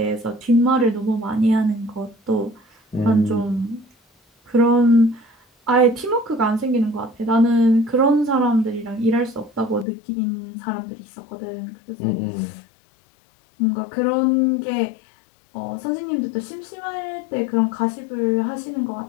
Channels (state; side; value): drops out; right; at 9.9 s